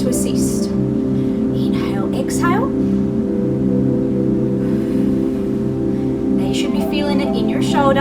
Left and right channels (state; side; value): identical; both; correlation 1.00